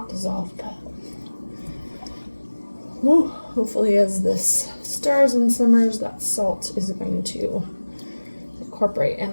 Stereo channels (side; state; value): both; inverted; correlation -1.00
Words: dissolved, but hopefully as this stirs and simmers, that salt is going to incorporate and